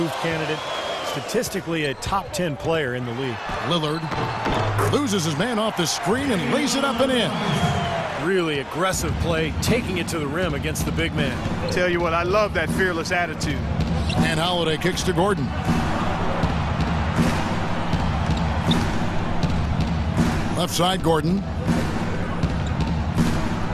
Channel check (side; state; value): both; identical; correlation 1.00